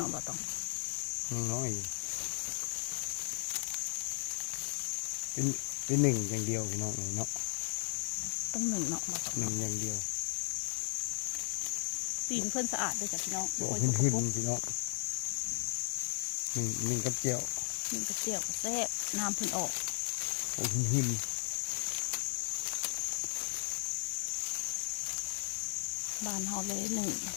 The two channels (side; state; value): right; silent; digital silence